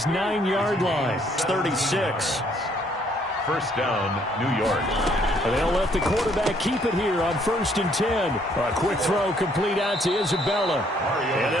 9-yard line. It's 36. 1st down, New York. And they'll let the quarterback keep it here on 1st and 10. A quick throw complete out to Isabella. And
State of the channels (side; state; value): both; normal; correlation 0.66